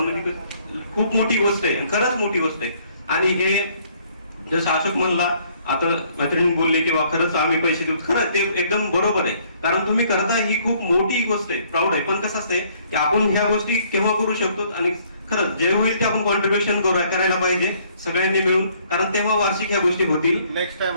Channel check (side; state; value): both; inverted; correlation -0.63